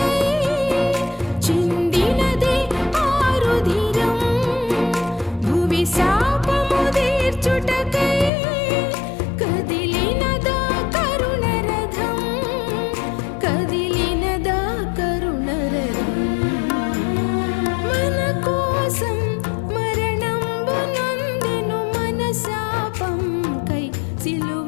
చిందినదే ఆరుధిరం, భువి శాపము తీర్చుటకై కదిలినదా కరుణరథం, కదిలినదా కరుణరథం. మన కోసం మరణంబు నొందెను, మన శాపం కై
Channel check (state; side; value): drops out; right; at 8.3 s